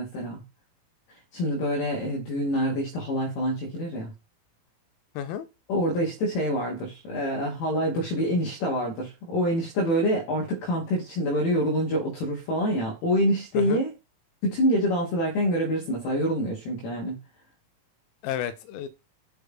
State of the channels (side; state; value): right; late; 18 ms